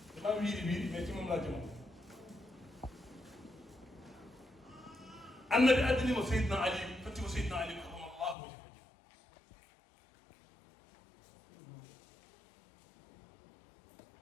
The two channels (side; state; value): right; drops out; at 8.3 s